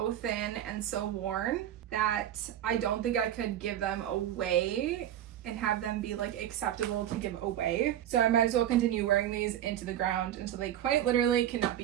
thin and so worn that I don't think I could give them away and have them be like acceptable to give away. So I might as well continue wearing these into the ground until they quite literally cannot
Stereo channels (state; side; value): quieter; left; 11.4 dB